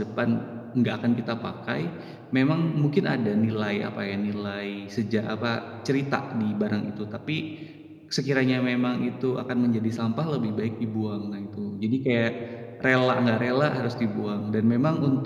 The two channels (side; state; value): both; identical; correlation 1.00